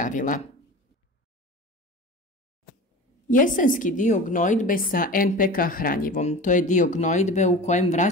Jesenski dio gnojidbe sa NPK hranjivom, to je dio gnojidbe u kojem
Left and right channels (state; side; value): normal; both; correlation 0.34